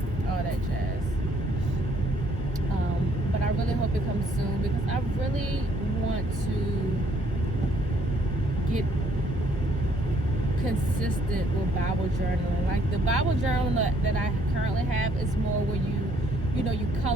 all that jazz. But I really hope it comes soon, because I really want to get consistent with Bible journaling. Like the Bible journal that I currently have is more where you know, you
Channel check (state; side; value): normal; both; correlation 0.66